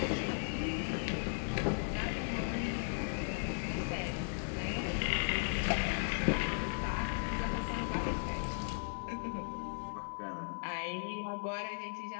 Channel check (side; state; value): right; silent; 53 dB below the other